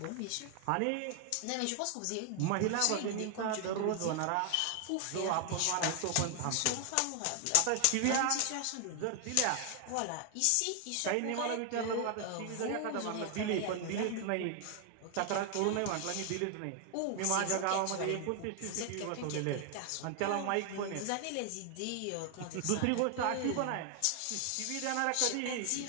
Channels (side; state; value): both; different; correlation 0.00